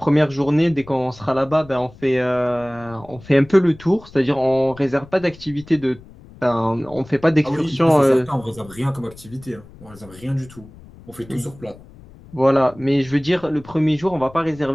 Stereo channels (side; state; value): left; noise; rumble, 21 dB below the sound